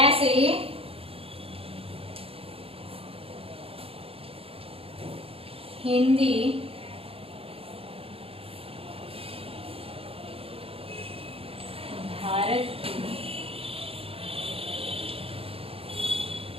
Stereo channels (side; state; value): left; late; 0.27 ms